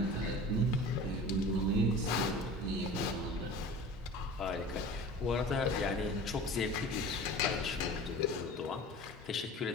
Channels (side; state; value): both; normal; correlation 0.39